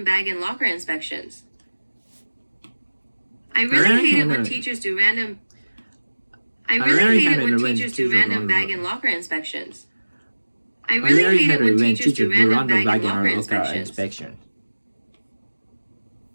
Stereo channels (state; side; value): inverted; both; correlation -1.00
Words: bag and locker inspections. I really hate it when teachers do random bag and locker inspections. I really hate it when teachers do random bag and locker inspections.